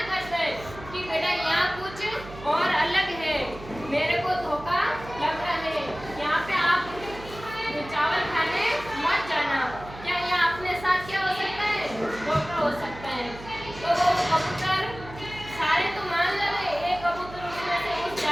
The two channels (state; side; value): noise; right; hum, 15 dB below the sound